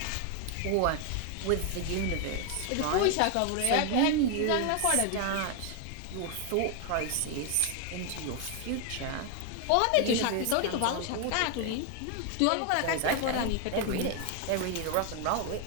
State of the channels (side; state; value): both; different; correlation 0.01